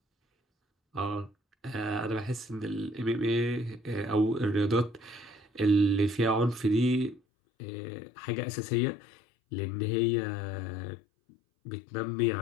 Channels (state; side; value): drops out; right; at 7.2 s